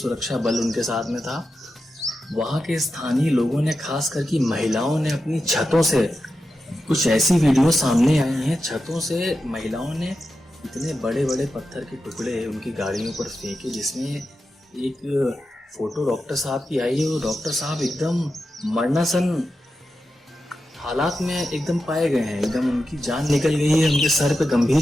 सुरक्षा बल उनके साथ में था। वहाँ के स्थानीय लोगों ने, खास करके महिलाओं ने, अपनी छतों से कुछ ऐसी वीडियो सामने आई हैं। छतों से महिलाओं ने इतने बड़े बड़े पत्थर के टुकड़े उनकी गाड़ियों पर फेंके, जिसमें एक फोटो डॉक्टर साहब की आई है। वो डॉक्टर साहब एकदम मरणासन हालात में एकदम पाए गए हैं, एकदम उनकी जान निकल गई है, उनके सर पे गंभीर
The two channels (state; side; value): normal; both; correlation 0.90